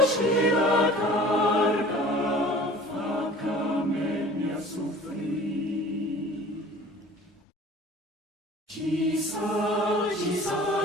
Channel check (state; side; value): normal; both; correlation 0.45